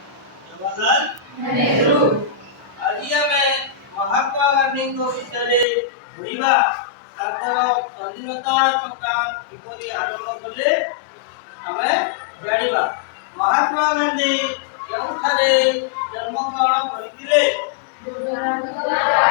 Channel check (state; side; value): drops out; right; at 5.7 s